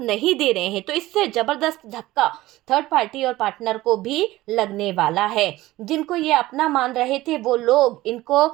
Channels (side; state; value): left; quieter; 17.2 dB